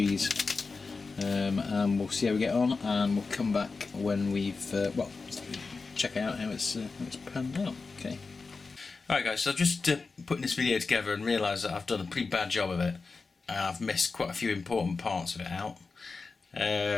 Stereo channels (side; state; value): right; quieter; 4.3 dB